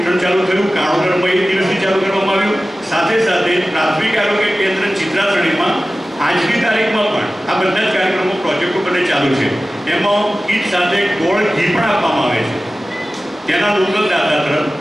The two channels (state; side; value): normal; both; correlation 0.96